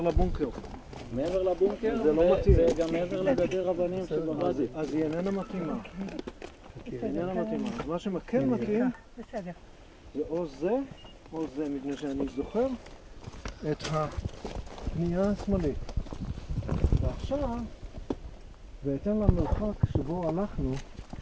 לבונקר. מעבר לבונקר, זה לא מתאים. וגם מעבר לגדר אבנים שבוואדי. אז היא איננה מתאימה. היא איננה מתאימה. אז מה שכן מתאים, בסדר. זה או זה, מפני שאני זוכר את הפנייה השמאלית. ועכשיו, בהתאם למרחק שבו הלכנו,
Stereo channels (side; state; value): both; identical; correlation 1.00